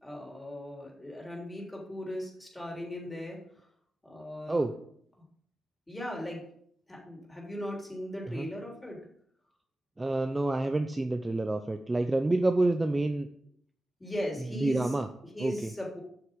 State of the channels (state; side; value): normal; both; correlation 0.95